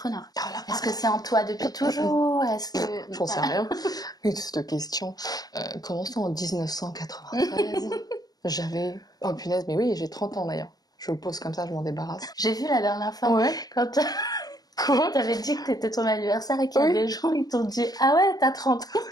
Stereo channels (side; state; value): right; late; 0.19 ms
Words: Est-ce que c'est en toi depuis toujours? Est-ce que... J'en sais rien. Cette question. Commençons en 1993. J'avais... Oh punaise, mais oui, j'ai 30 ans d'ailleurs. Je le pose comme ça, je m'en débarrasse. J'ai vu la dernière fois, quand t'avais dit que t'étais ton anniversaire et qu'il y a des gens, ils t'ont dit « Ah ouais, t'as 30 ans,